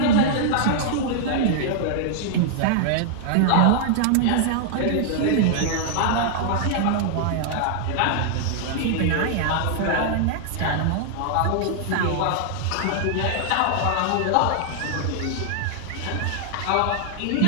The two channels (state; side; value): different; both; correlation -0.01